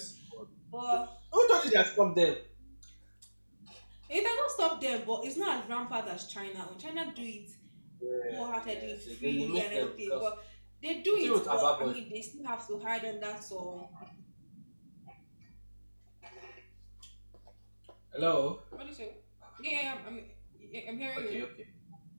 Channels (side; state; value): both; inverted; correlation -1.00